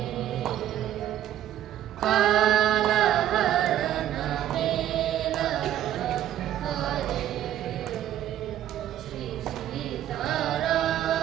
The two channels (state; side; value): quieter; left; 11.8 dB